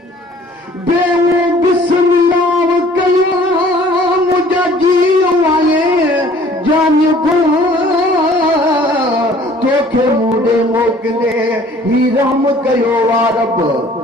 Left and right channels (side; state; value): both; normal; correlation 0.54